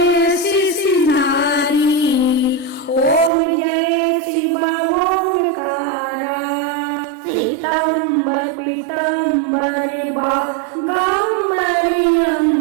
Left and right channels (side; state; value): left; drops out; at 3.3 s